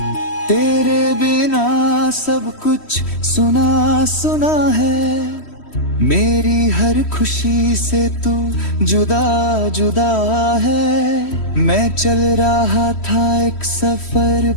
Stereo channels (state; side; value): late; right; 3.1 ms